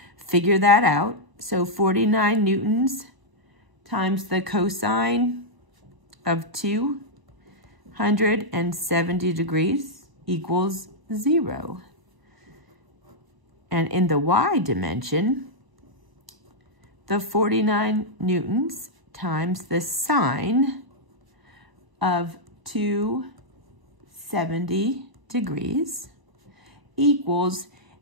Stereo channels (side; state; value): left; late; 1.0 ms